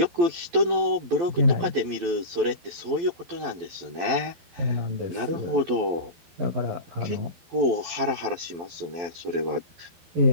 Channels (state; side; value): late; left; 12 ms